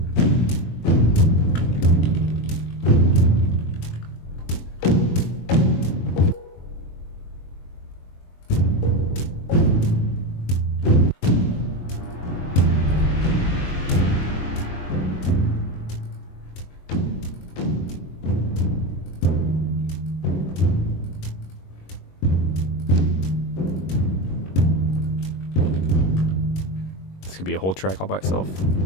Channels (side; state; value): right; late; 22 ms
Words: Could be a whole track all by itself.